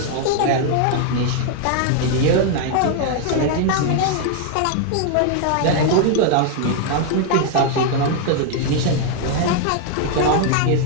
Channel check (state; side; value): different; both; correlation 0.00